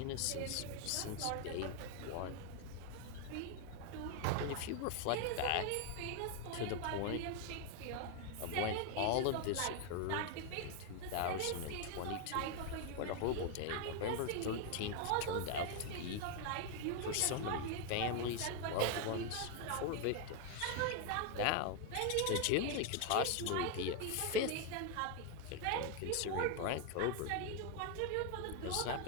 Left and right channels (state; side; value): different; both; correlation 0.01